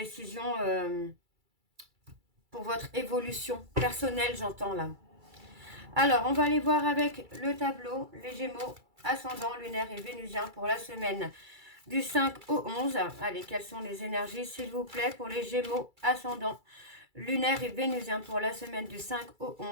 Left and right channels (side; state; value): left; late; 2.3 ms